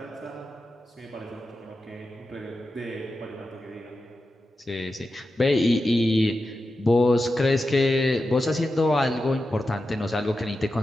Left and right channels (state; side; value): normal; both; correlation 0.91